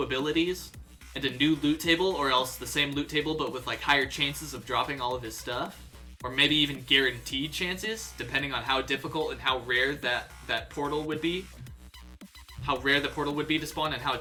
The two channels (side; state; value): both; identical; correlation 1.00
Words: and a new loot table, or else the same loot table but with like higher chances of dropping all of his stuff, or maybe even guaranteed chances, depending on how difficult and how rare that portal would be, how rare the portal would be to spawn, and how